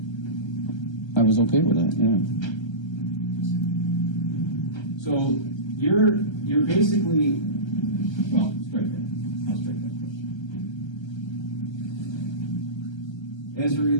I was okay with that, yeah. So you're basically, well, strike that. I'll strike that question. As it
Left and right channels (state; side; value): late; right; 1.3 ms